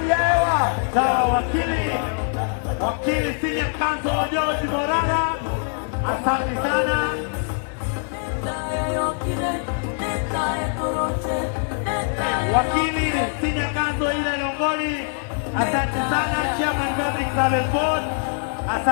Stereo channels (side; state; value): right; silent; 63 dB below the other